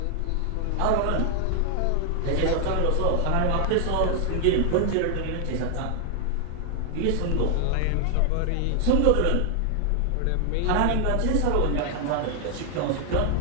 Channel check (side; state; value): both; different; correlation 0.00